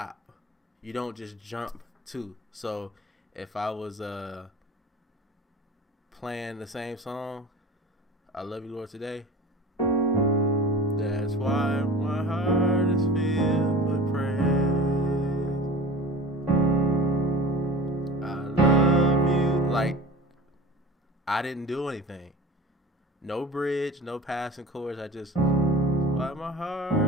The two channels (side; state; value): both; normal; correlation 0.39